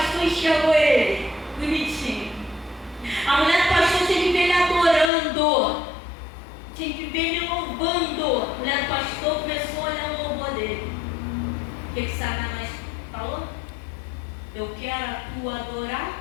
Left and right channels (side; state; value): right; drops out; at 5.1 s